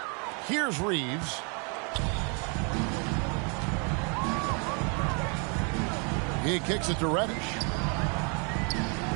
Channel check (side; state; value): left; quieter; 35.7 dB